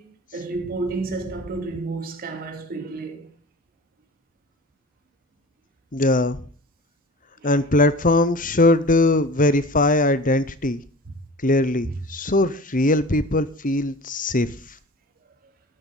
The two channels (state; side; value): normal; both; correlation 0.39